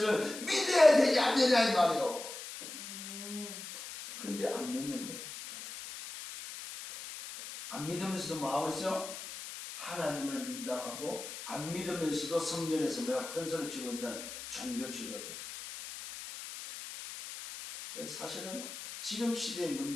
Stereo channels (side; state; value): left; noise; hiss, 10 dB below the sound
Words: 믿어야 되지 않느냐 이 말이요. 그런데 안 믿는 거예요. 안 믿으면서도 뭐 하고 있어요? 하나님을 믿다 하고 안 믿으면서도 성전에서 큰 소리 치고 있는 종교 지도자. 사실은 지금 시대의